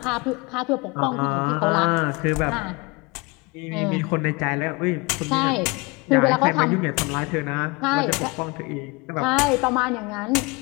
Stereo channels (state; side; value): quieter; right; 26.4 dB